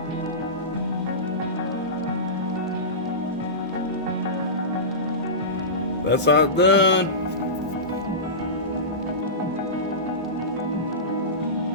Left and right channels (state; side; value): normal; both; correlation -0.19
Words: That's how it's done.